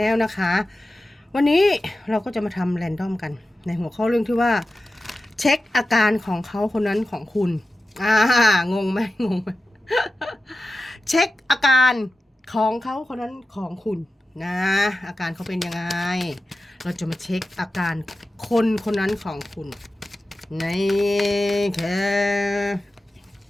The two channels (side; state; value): both; normal; correlation 0.94